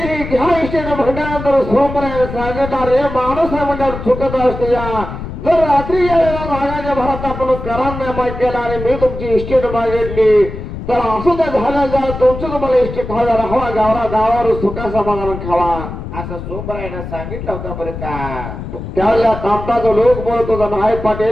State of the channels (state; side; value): noise; left; rumble, 8 dB below the sound